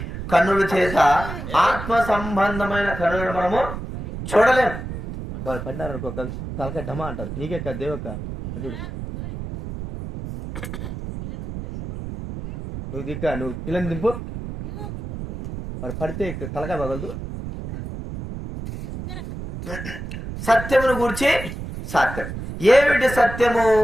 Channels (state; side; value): noise; right; rumble, 8 dB below the sound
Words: కన్నుల చేత, ఆత్మ సంబంధమైన కన్నులను మనము చూడలేము. వాళ్ళు పడినారు అనుకో, తలకాయ ఢమా అంటారు, నీకే కదా దేవక్క, చూడు నువ్వు దిక్కా, నువ్వు పిల్లని దింపు, వాడు పడితే తలకాయ పగలదు. సత్యమును గురించి సత్యం ఏమిటి? సత్యము